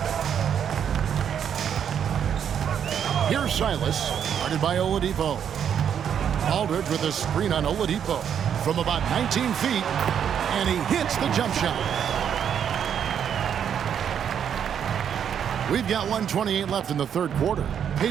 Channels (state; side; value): quieter; left; 8.5 dB